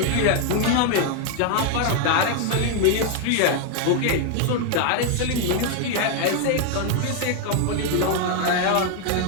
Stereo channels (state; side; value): different; both; correlation 0.00